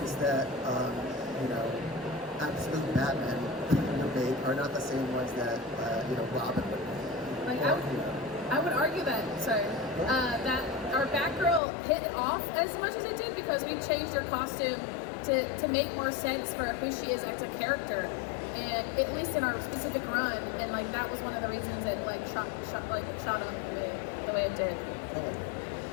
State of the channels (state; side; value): drops out; right; at 11.6 s